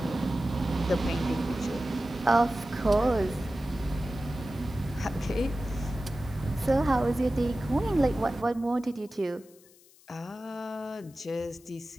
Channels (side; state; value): left; noise; hiss, 27 dB below the sound